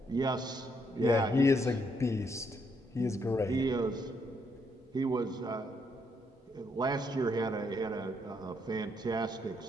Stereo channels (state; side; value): normal; both; correlation 0.74